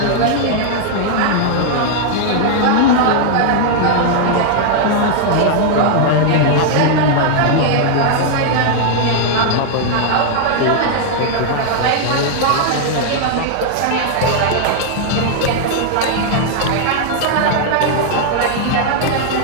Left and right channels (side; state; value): both; different; correlation -0.01